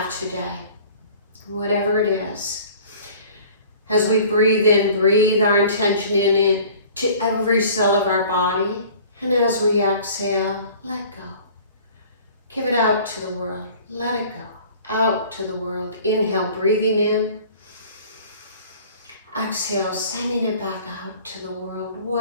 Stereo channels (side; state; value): both; inverted; correlation -0.48